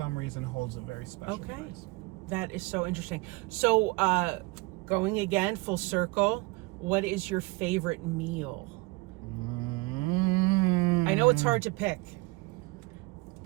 reason, holds a very special place. That is so interesting. So, going again, full circle, what is your favorite meal? I know it's hard to pick.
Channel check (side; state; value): left; quieter; 23.6 dB